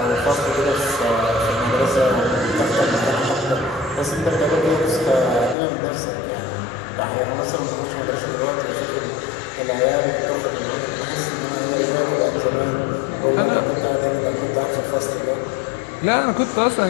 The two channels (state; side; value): drops out; right; at 5.6 s